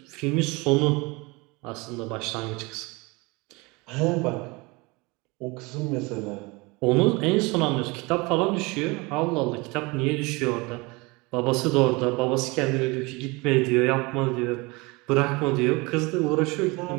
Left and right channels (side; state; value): left; quieter; 25.5 dB